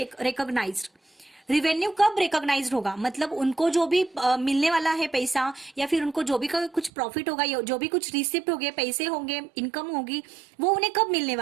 recognised. Revenue कब रिकॉग्नाइज्ड होगा, मतलब उनको जो भी मिलने वाला है पैसा, या फिर उनको जो भी कुछ प्रॉफिट होगा, या जो भी कुछ रिसिप्ट होंगे, पैसे होंगे, इनकम होगी, वो उन्हें कब मिलने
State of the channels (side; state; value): left; drops out; at 6.9 s